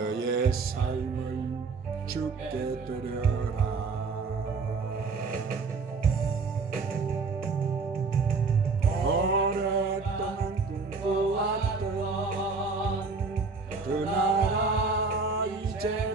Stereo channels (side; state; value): left; quieter; 4.4 dB